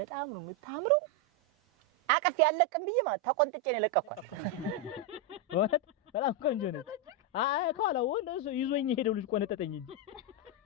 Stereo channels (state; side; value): normal; both; correlation 0.02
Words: ነው የምታምረው አቀፍ ያለቅም ብዬ ማለት ተቆንጥጬ ነው ለቀኳት ወጥ በጣም ቆንጆ ነች አይ ካላ ወንድ እሱ ይዞኝ ሄደው ልጅ ቆነጠጠኝ እንጂ